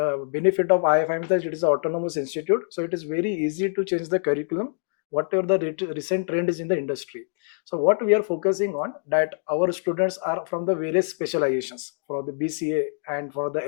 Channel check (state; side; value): silent; right; digital silence